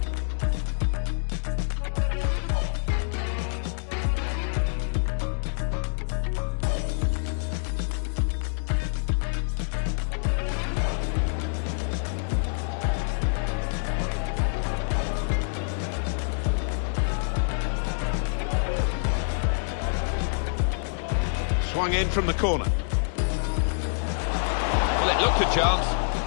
Swung in from the corner. Well, it looked a chance.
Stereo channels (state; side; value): silent; right; digital silence